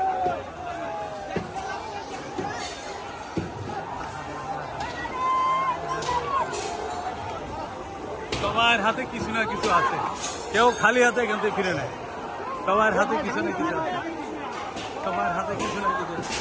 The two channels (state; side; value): identical; both; correlation 1.00